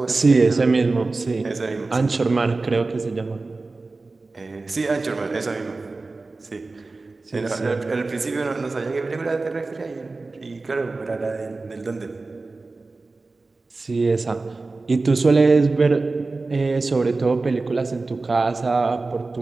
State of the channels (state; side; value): quieter; left; 3.6 dB